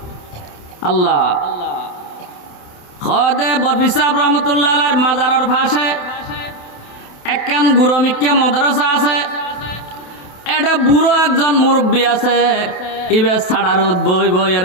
আল্লাহ খদে বরফি সাহেব রহমতুল্লাহ আলাইহির মাজারের পাশে একখান গুরমিক্কা মাদ্রাসা আছে। এটা বুড়ো একজন মুরব্বী আছে ইবে সাড়ারুদ বই বইয়ের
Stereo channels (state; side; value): late; right; 28 ms